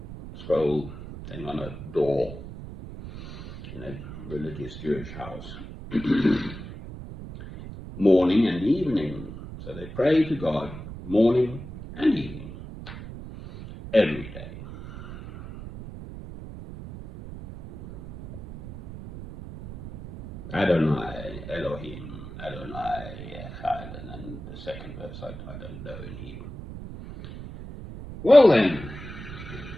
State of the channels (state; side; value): noise; right; rumble, 12 dB below the sound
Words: scroll thing on a door in a religious Jewish house. Morning and evening. So they pray to God morning and evening, every day. Adonai, Elohim, Adonai, Echad, and then the second verse I don't know in Hebrew. Well then,